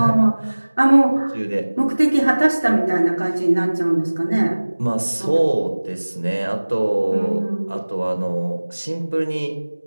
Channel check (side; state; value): both; inverted; correlation -1.00